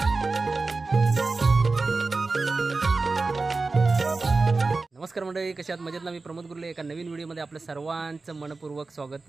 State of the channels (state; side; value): quieter; left; 3.8 dB